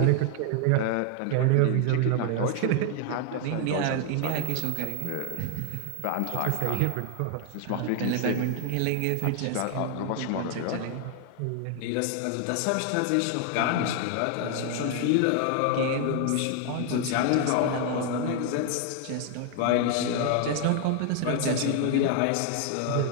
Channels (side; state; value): both; different; correlation 0.00